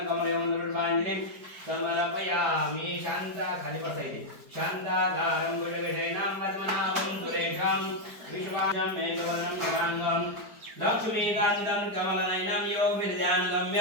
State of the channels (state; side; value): late; left; 4.7 ms